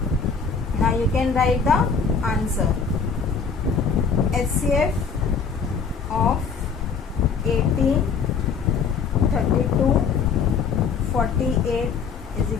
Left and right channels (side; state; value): right; quieter; 5.7 dB